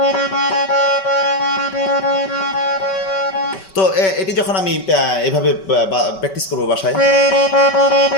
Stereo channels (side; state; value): right; late; 5.2 ms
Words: তো এটি যখন আমি এভাবে প্র্যাকটিস করবো বাসায়,